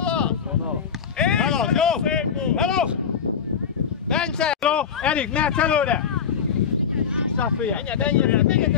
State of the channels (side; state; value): right; quieter; 7.0 dB